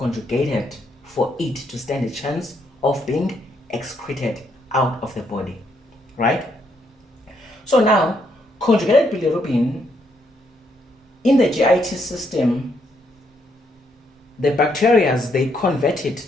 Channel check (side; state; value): both; normal; correlation 0.74